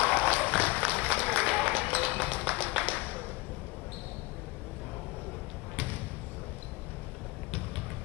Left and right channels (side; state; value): right; quieter; 22.1 dB